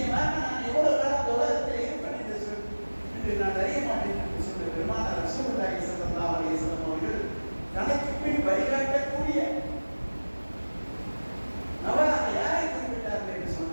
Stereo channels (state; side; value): inverted; both; correlation -1.00